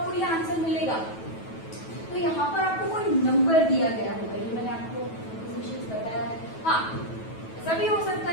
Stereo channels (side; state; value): right; late; 9.2 ms